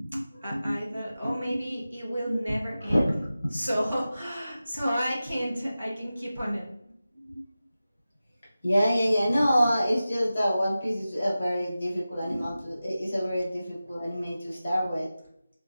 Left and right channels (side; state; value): both; inverted; correlation -0.95